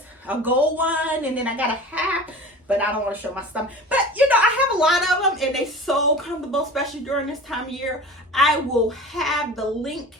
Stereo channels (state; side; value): normal; both; correlation 0.37